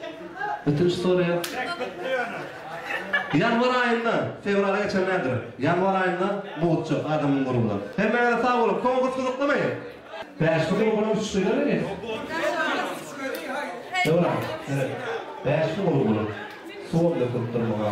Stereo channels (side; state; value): both; identical; correlation 1.00